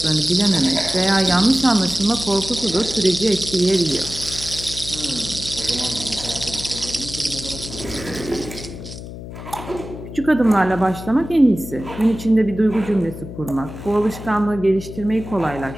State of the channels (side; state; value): left; noise; hum, 11 dB below the sound